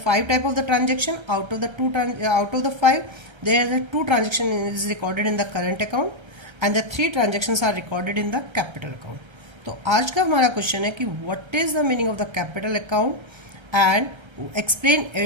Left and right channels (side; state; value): left; late; 1.3 ms